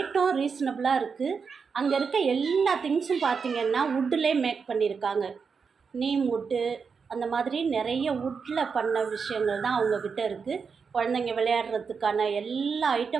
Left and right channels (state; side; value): quieter; left; 5.7 dB